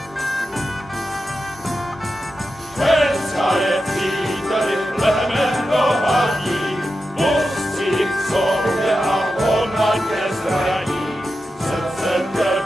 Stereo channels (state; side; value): normal; both; correlation 0.90